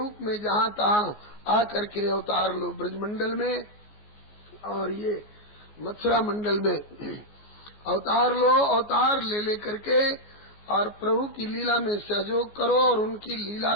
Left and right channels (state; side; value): late; right; 14 ms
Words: में जहाँ तहाँ आकर के अवतार लो ब्रजमंडल में और ये मथुरा मंडल में अवतार लो। अवतार ले लेकर के और प्रभु की लीला में सहयोग करो और उनकी लीला